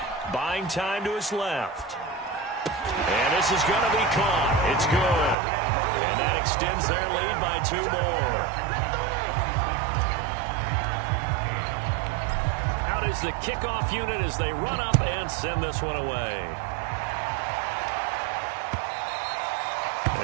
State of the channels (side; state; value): left; drops out; at 5.4 s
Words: Buying time to his left. And this is going to be caught. It's good. And that extends their lead by 2 more. Out is the kickoff unit as they run up and send this one away.